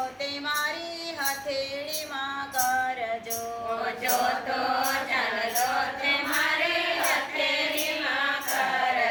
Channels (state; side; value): identical; both; correlation 1.00